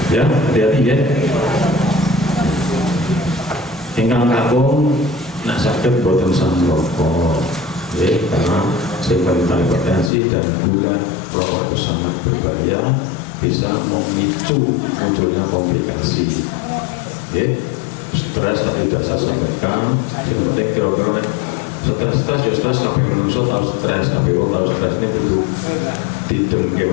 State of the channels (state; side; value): drops out; right; at 10.1 s